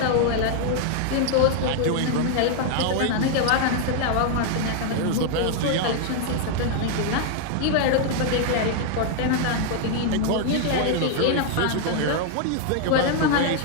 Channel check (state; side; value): different; both; correlation 0.00